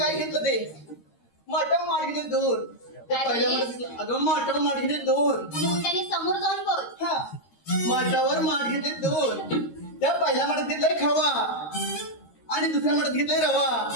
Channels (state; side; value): late; right; 13 ms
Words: घेतलं ते माटाव माठ घेतले 2 त्या पहिल्या माठ अगं माटाव माठ घेतले 2 मोठ्याने समोर जाऊन बोल. हा माठावर माठ घेतले 2 त्या पहिल्या माठात घेतलाय खवा आणि दुसऱ्या माठात घेतलाय रवा